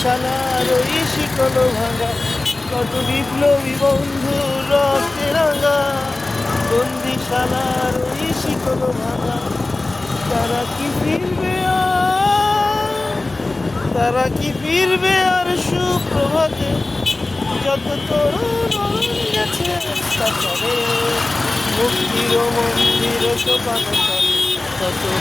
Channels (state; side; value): quieter; right; 3.0 dB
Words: ওই শিকল ভাঙা। কত বিপ্লবী বন্ধু রক্তে রাঙা, বন্দিশালার ওই শিকল ভাঙা। তারা কি ফিরবে আর, তারা কি ফিরবে আর সুপ্রভাতে, যত তরুণ গেছে কাতারে। মুক্তির মন্দির সোপান তলে কত